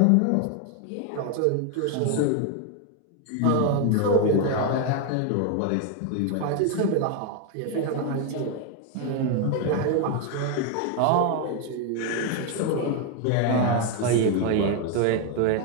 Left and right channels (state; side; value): different; both; correlation 0.01